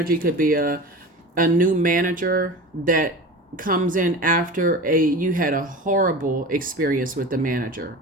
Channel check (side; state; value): both; normal; correlation 0.32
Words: could be a new manager that comes in after you had a horrible experience with the manager.